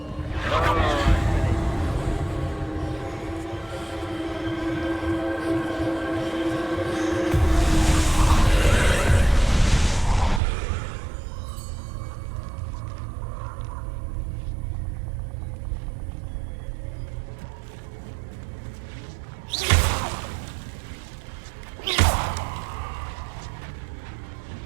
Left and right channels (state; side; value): drops out; left; at 10.4 s